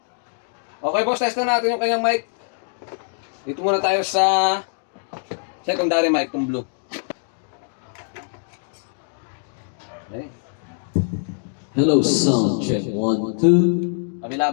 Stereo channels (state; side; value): silent; right; digital silence